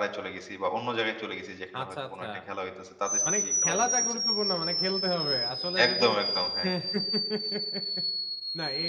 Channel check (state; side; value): identical; both; correlation 1.00